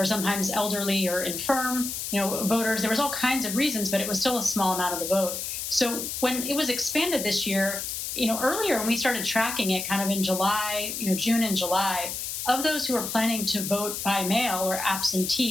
sometimes elderly or infirm, voters. There was all kinds of reasons, but it was still a small amount of the vote. So when it was expanded this year, earlier when we started tracking it kind of in July, June and July, of those who were planning to vote by mail or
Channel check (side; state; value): left; noise; hiss, 4 dB below the sound